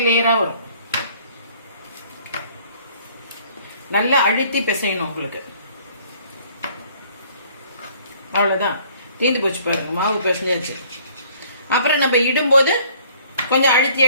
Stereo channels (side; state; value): both; inverted; correlation -0.57